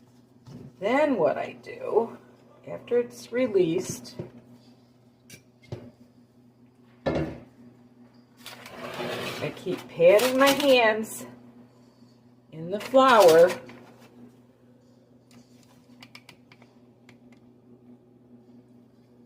Then what I do, after it's released, I keep patting my hands in the flour.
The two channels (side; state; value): both; identical; correlation 1.00